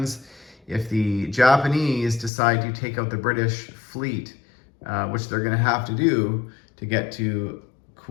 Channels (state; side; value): drops out; right; at 2.3 s